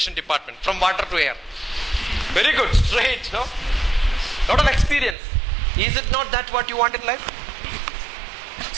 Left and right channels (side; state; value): left; drops out; at 5.2 s